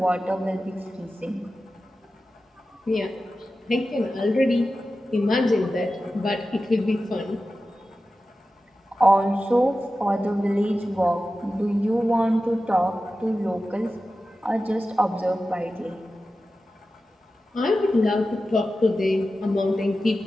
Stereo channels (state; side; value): normal; both; correlation 0.93